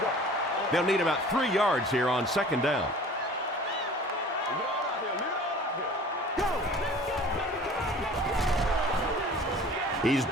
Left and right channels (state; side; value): normal; both; correlation 0.45